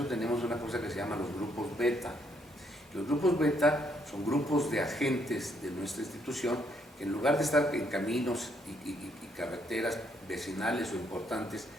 tenemos una cosa que se llama los grupos beta. Los grupos beta son grupos de agentes de nuestra institución que, en lugar de estar en caminos y carreteras vecinales o importantes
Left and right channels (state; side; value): normal; both; correlation 0.71